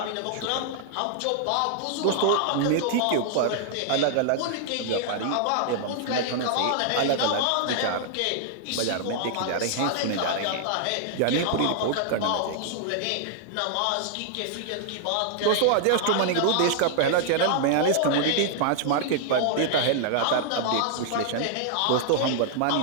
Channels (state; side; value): different; both; correlation -0.01